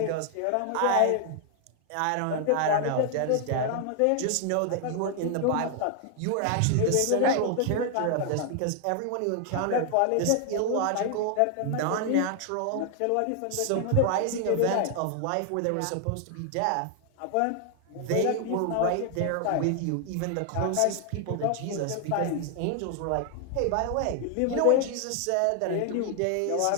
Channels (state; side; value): different; both; correlation 0.00